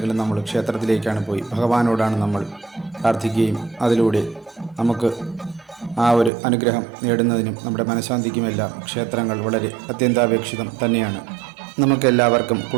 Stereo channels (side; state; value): left; drops out; at 6.3 s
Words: നമ്മൾ ക്ഷേത്രത്തിലേക്കാണ് പോയി ഭഗവാനോടാണ് നമ്മൾ പ്രാർത്ഥിക്കുകയും അതിലൂടെ നമുക്ക് ആ ഒരു അനുഗ്രഹം നേടുന്നതിനും നമ്മുടെ മനഃശാന്തിക്കുമെല്ലാം ക്ഷേത്രങ്ങൾ വളരെ അത്യന്താപേക്ഷിതം തന്നെയാണ്. നമുക്കെല്ലാവർക്കും